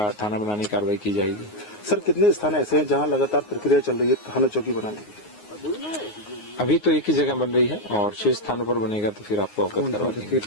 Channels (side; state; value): right; late; 9.6 ms